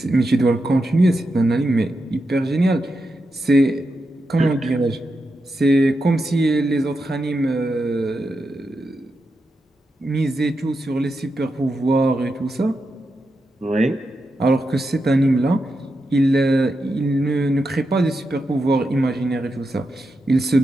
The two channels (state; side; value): normal; both; correlation 0.87